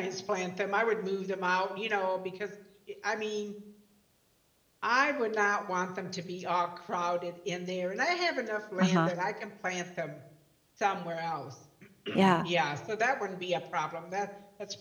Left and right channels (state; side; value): identical; both; correlation 1.00